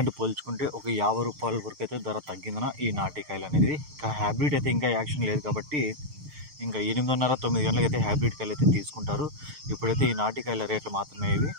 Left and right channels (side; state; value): left; late; 6.6 ms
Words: పోల్చుకుంటే ఒక 50 రూపాయల వరకు అయితే ధర తగ్గిందన ఈ నాటికాయలు అనేది. ఇక హైబ్రిడ్ అయితే ఇంకా యాక్షన్ లేదు కాబట్టి ఇంకా 8:30-9 గంటలకు అయితే హైబ్రిడ్ కాయలు అయితే తీసుకుంటారు. ఇప్పుడైతే ఈ నాటికాయల రేట్లు మాత్రమే ఇవి.